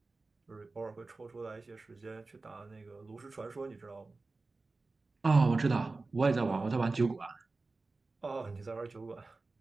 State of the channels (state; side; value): quieter; left; 3.6 dB